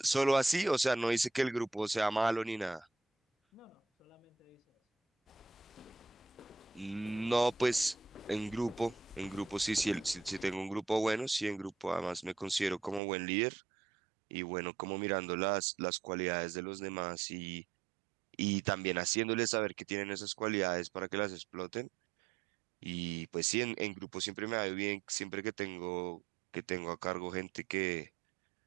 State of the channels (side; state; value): left; drops out; at 13.0 s